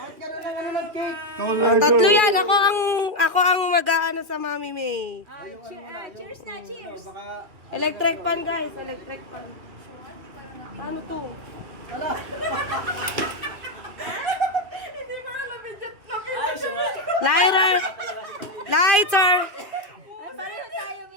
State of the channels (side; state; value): left; late; 2.4 ms